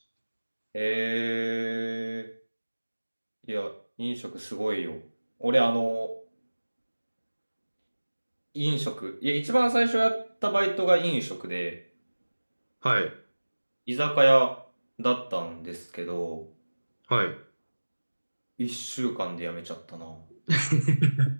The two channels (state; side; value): inverted; both; correlation -1.00